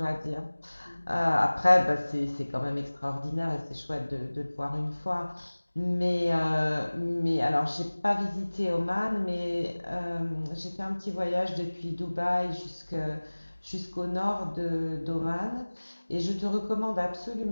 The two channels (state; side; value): inverted; both; correlation -1.00